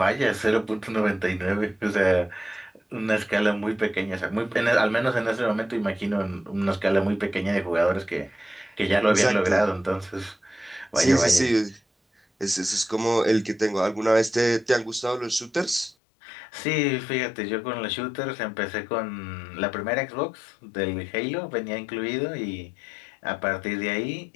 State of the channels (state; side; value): drops out; right; at 16.0 s